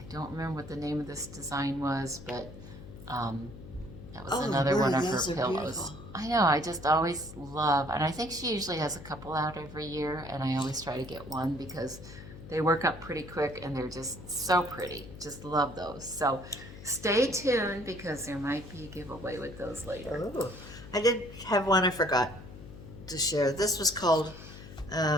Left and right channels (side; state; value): left; noise; hum, 15 dB below the sound